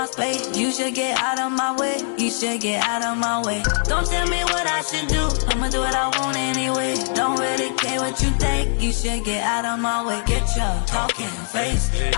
space? You should get out of my way, you should get out of my way. Don't tell me what I should do, I'ma do what I want anyway. Don't really care what you think, you should get out of my way. Get your talking face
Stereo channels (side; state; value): right; silent; digital silence